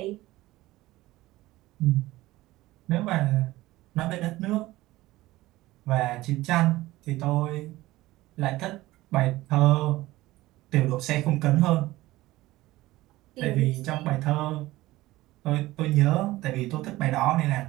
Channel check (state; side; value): quieter; left; 17.8 dB